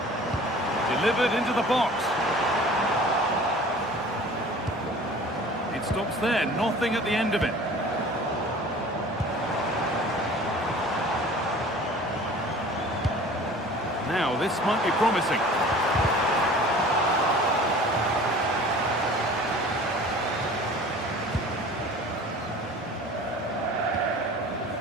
Delivered into the box. It stops there, nothing at the end of it. Now, this might be promising.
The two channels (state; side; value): normal; both; correlation 0.45